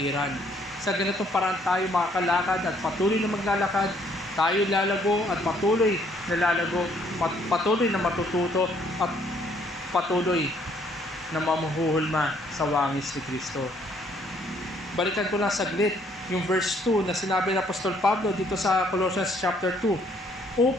Sa ganitong paraan tayo makakalakad at patuloy na maglalakad. Tayo lalago at patuloy na lalago. Patuloy na matututo at patuloy na mamuhuhulma sa wangis ni Kristo. Balikan ko lang saglit yung verse 2 na sinabi ng Apostol Pablo dito sa Colossians chapter 2,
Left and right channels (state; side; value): normal; both; correlation 0.65